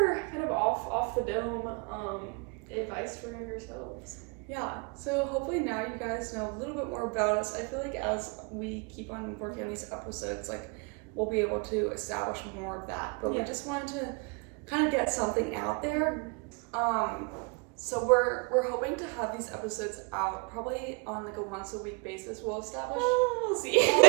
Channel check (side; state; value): left; quieter; 32.1 dB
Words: kind of off the dome advice for younger selves. Yeah, so hopefully now you guys know a little bit more about us. I feel like as we keep on working on these episodes, like we'll be able to establish more of that. But we just wanted to kind of get something out there. So we're hoping to have these episodes out probably on like a once a week basis. We'll establish